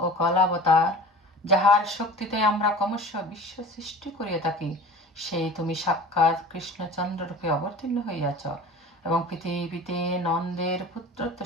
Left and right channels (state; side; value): normal; both; correlation 0.39